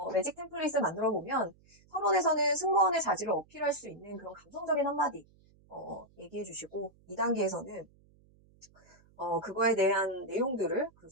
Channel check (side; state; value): right; noise; hum, 30 dB below the sound